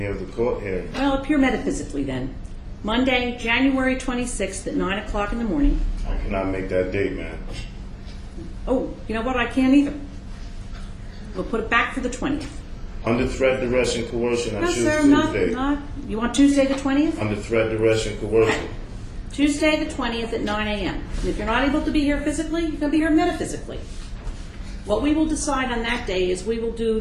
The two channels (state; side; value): identical; both; correlation 1.00